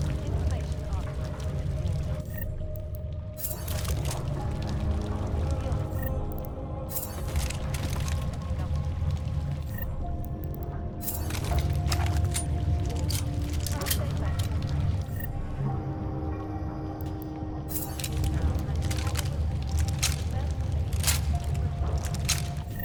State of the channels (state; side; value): identical; both; correlation 1.00